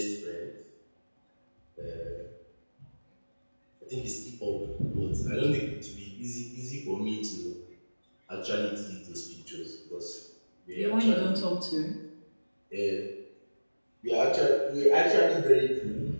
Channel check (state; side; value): inverted; both; correlation -1.00